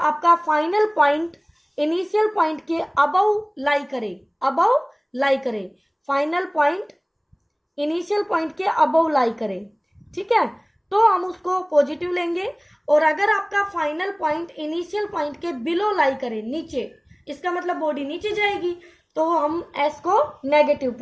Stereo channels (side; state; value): both; identical; correlation 1.00